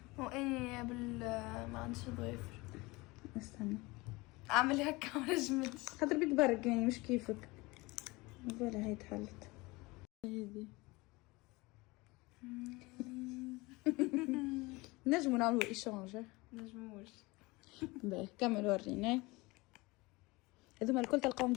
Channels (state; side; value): quieter; right; 23.1 dB